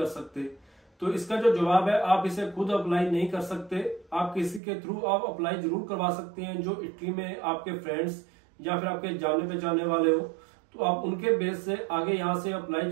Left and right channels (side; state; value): left; drops out; at 4.6 s